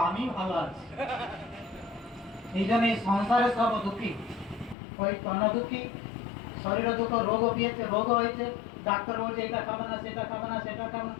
আমি ভালো আছি। এই জন্য এই সংসারে সব দুঃখী, ওই তন দুঃখী, শরীরে দুঃখ, রোগ পেয়েছে, রোগ হয়েছে, ডাক্তার বলছে এটা খাবে না সেটা খাবে না সেটা খাবে না,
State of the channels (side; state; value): right; drops out; at 4.8 s